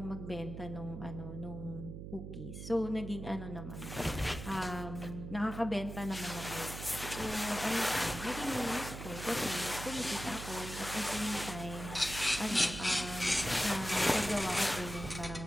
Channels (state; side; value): noise; right; hum, 8 dB below the sound